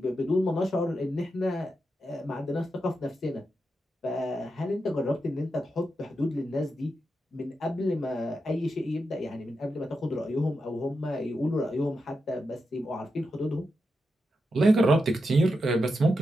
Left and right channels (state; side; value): normal; both; correlation 0.87